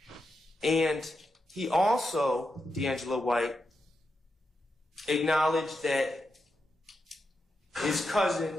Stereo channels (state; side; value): normal; both; correlation 0.86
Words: And he also, D'Angelo White, acknowledged that his